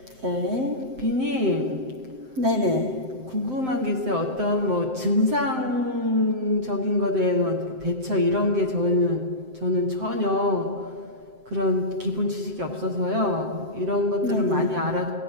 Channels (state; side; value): late; left; 7.7 ms